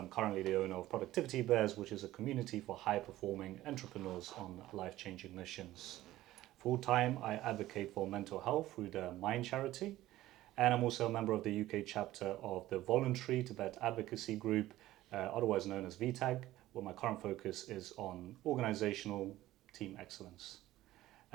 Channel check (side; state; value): left; quieter; 15.5 dB